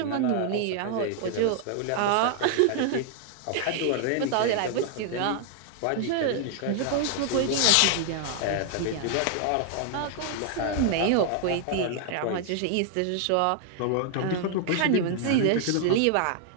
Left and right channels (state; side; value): different; both; correlation 0.00